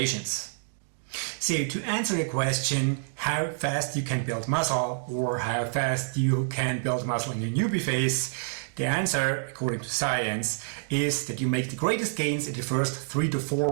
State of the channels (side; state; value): left; silent; digital silence